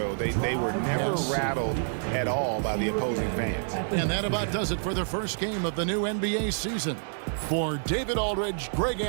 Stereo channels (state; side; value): silent; left; 57 dB below the other